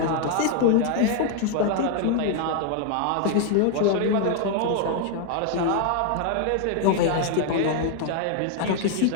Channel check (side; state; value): both; different; correlation 0.00